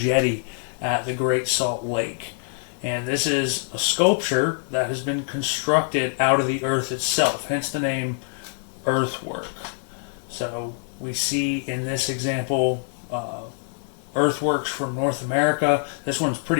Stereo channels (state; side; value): silent; right; digital silence